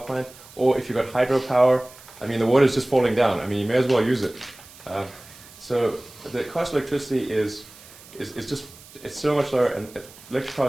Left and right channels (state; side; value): noise; right; hiss, 21 dB below the sound